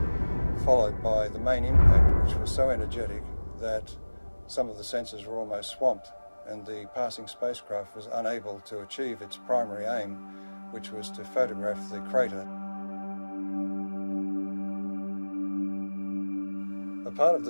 followed by the main impact, which was so energetic that some of the sensors were almost swamped, and the passing spacecraft was unable to achieve its primary aim, which was to photograph the crater. A part of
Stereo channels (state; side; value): inverted; both; correlation -1.00